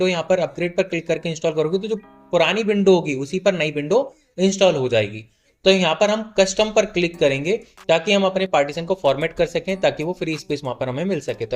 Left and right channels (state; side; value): identical; both; correlation 1.00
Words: यहाँ पर अपग्रेड पर क्लिक करके इंस्टॉल करोगे तो जो पुरानी विंडो होगी उसी पर नई विंडो इंस्टॉल हो जाएगी। तो यहाँ पर हम कस्टम पर क्लिक करेंगे ताकि हम अपने पार्टीशन को फॉर्मेट कर सकें, ताकि वो फ्री स्पेस वहां पर हमें मिल सके। तो